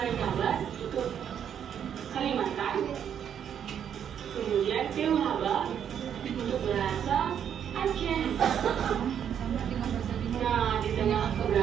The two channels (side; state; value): left; quieter; 8.8 dB